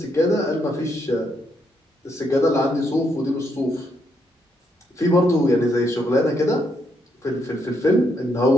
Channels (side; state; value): both; normal; correlation 0.77